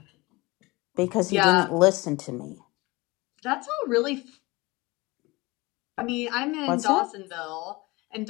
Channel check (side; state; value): right; quieter; 23.0 dB